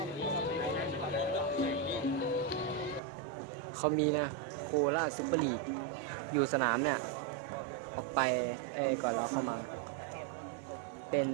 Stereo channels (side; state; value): left; drops out; at 3.0 s